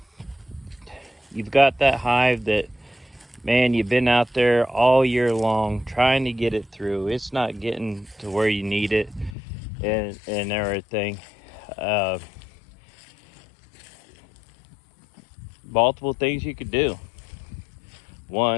you've got that hive that, man, you've been out there all year long trying to get it through. It's not getting to where you need it and everything. Multiple things you could do.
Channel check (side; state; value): right; drops out; at 9.3 s